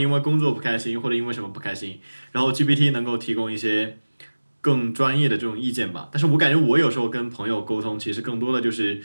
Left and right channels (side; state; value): both; inverted; correlation -1.00